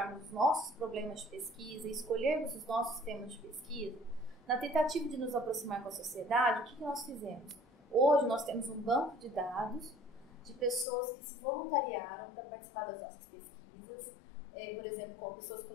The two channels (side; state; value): right; drops out; at 10.9 s